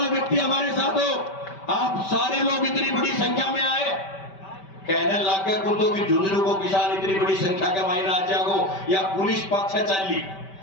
व्यक्ति हमारे साथ हो। आप सारे लोग इतनी बड़ी संख्या में आए, कहने लाके कुत्तों की झुंझुनू को किसान इतनी बड़ी संख्या के मायने आ जाओ या पुलिस पक्ष चली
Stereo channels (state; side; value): late; right; 5.2 ms